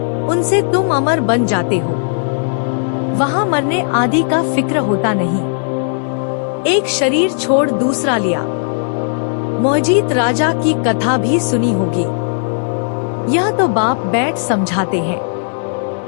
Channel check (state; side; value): silent; right; 69 dB below the other